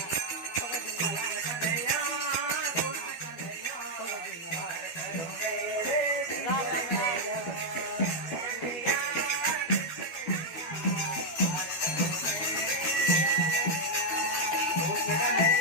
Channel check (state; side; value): late; right; 12 ms